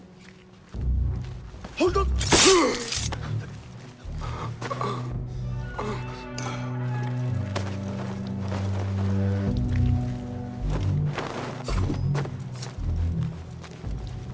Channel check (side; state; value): both; identical; correlation 1.00